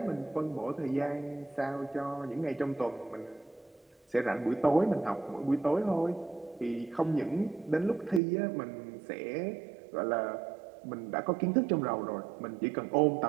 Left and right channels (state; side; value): drops out; left; at 8.2 s